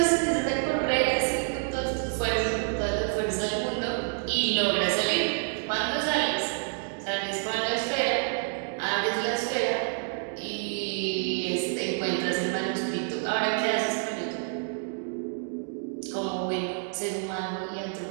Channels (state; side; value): silent; left; 59 dB below the other